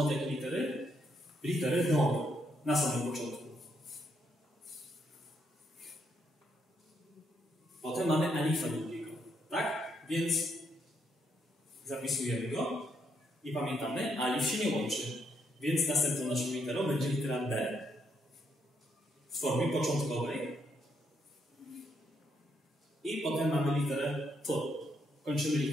jakiej litery? Litery do, na samym początku. Potem mamy alifa długiego, tak? Więc zapisujemy go i pamiętamy, alif się nie łączy. Więc następną naszą literą będzie litera B. W formie początkowej. I potem mamy literę T. Kończymy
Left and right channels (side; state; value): both; normal; correlation 0.75